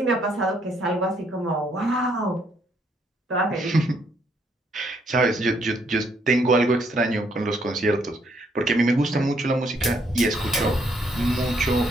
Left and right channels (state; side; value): normal; both; correlation 0.70